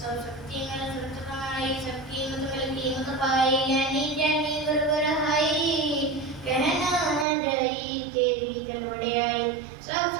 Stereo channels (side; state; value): left; drops out; at 7.2 s